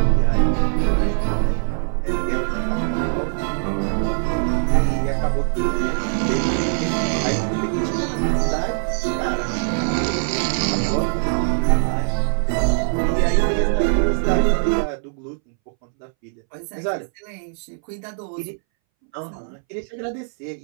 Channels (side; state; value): left; silent; 63 dB below the other